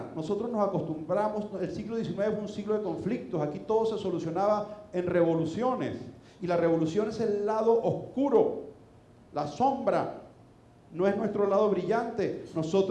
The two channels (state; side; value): identical; both; correlation 1.00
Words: Nosotros nos acostumbramos, el siglo XIX fue un siglo de conflictos, aquí todo se solucionaba en revoluciones. Y la revolución es el lado oscuro, la sombra, no es nuestro lado brillante.